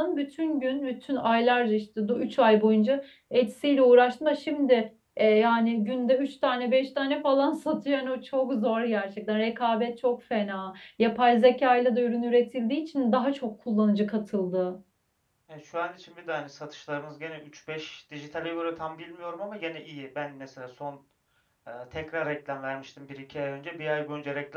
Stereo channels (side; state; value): both; identical; correlation 1.00